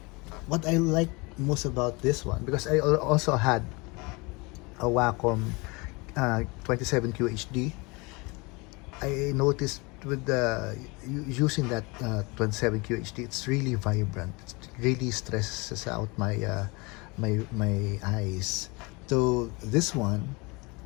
what I like most about this one, because I also had a Wacom 27 QHD, I noticed with using that 27 QHD, it's really vibrant. It really stresses out my eyes. So this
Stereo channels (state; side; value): quieter; right; 26.8 dB